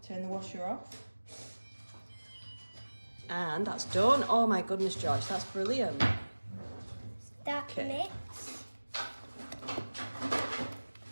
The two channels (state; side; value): inverted; both; correlation -1.00